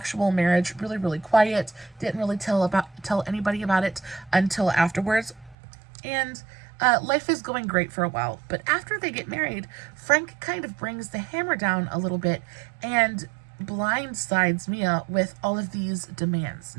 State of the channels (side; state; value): left; drops out; at 5.6 s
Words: marriage really, really quiet. Didn't really tell anybody about it until afterwards. And life is going great for a while, but after they get married, Frank kind of brings the hammer down a little bit and blindsides Mia with all of these demands.